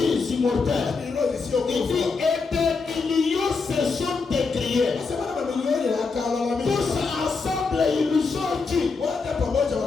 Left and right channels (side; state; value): right; quieter; 4.5 dB